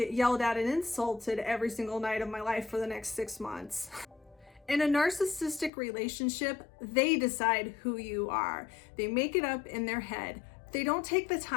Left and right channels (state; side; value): drops out; right; at 5.7 s